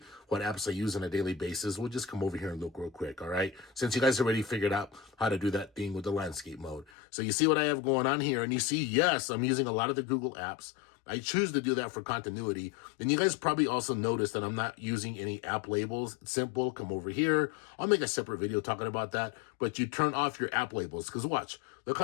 what apps I use on a daily basis, we'll just come over here and look real quick, all right? Since you guys already figured out how to do that thing with the landscape mode. So you see what I have going on here, and you see, yes, I'm using a lot of the Google apps. I choose to do that for continuity. And you guys probably also noticed that I'm not using any app labels. It's simple. Come over here. I'll make a separate video talking about that. But you turn off your app labels, because watch, look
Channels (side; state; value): right; drops out; at 6.9 s